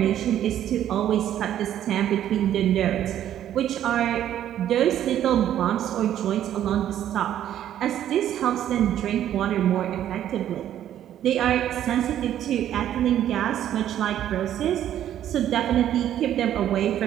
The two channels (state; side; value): quieter; left; 11.2 dB